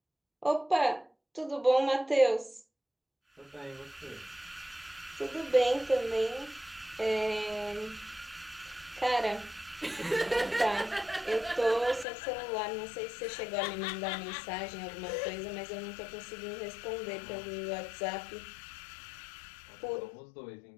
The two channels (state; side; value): drops out; right; at 12.1 s